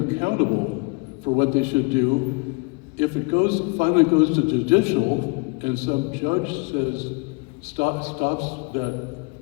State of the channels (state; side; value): quieter; right; 30.5 dB